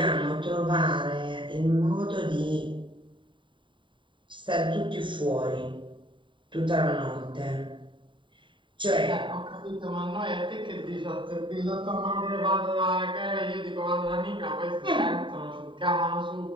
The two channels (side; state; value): left; late; 0.24 ms